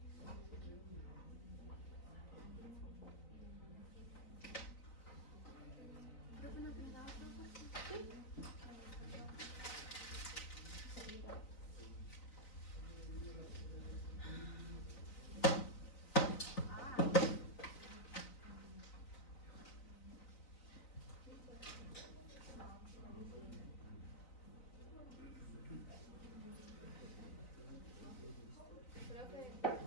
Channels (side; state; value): right; late; 3.9 ms